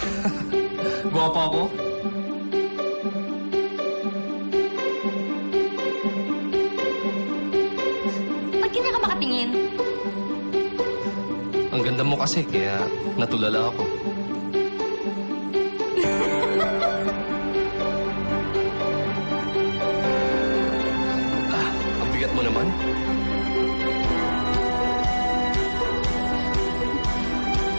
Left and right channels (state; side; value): inverted; both; correlation -1.00